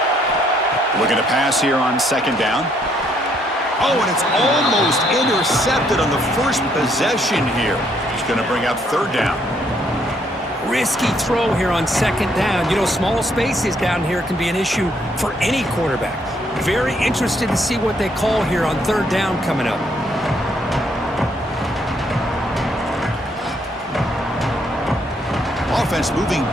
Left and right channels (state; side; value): normal; both; correlation 0.70